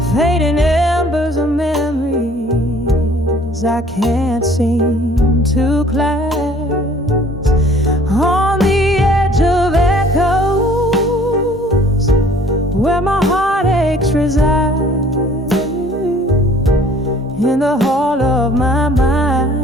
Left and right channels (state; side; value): normal; both; correlation 0.54